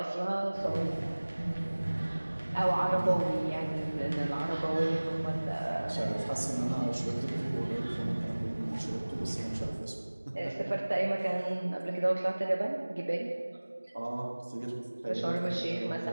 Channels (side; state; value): both; inverted; correlation -1.00